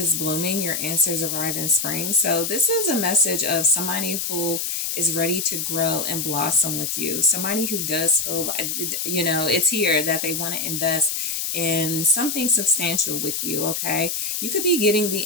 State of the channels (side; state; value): left; noise; hiss, 2 dB below the sound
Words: blooming, your answers arrive in spring. So this is a message of somebody who is ready to grow and blossom with you. Somebody who does feel like, it's here that they want to invest in something substantial with you. Okay, you could be getting